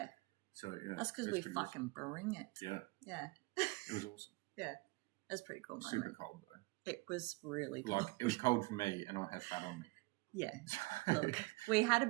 So, yeah. That's because we fucking bring it. Yeah. Yeah. It was awesome. Yeah. That's pretty cool. Super cold, though. It was really cold. Like, it was cold for me, and I had fat on me. Yeah. Look, we had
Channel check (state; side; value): quieter; left; 24.2 dB